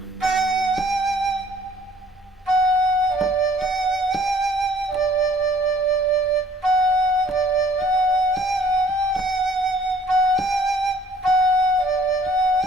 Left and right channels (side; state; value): both; normal; correlation 0.57